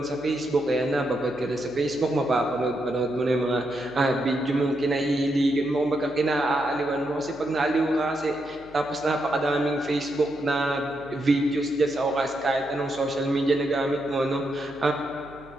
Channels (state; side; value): noise; right; hum, 25 dB below the sound